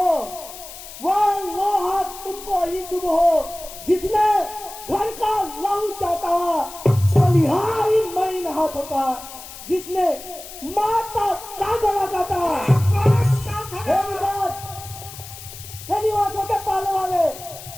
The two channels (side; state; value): left; noise; hiss, 14 dB below the sound